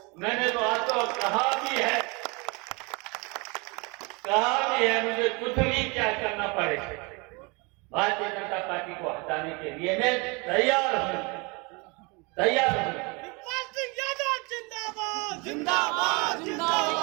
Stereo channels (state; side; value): quieter; left; 28.6 dB